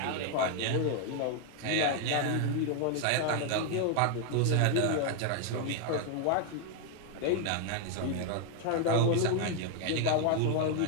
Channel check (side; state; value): both; different; correlation 0.00